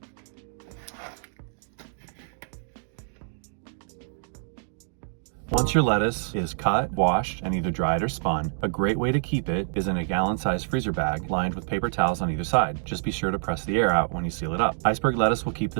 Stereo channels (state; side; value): silent; left; digital silence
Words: Once your lettuce is cut, washed, and either dried or spun, a great way to keep it is in a gallon-sized freezer bag lined with paper towels on either side. Just be sure to press the air out when you seal it up. Iceberg lettuce will keep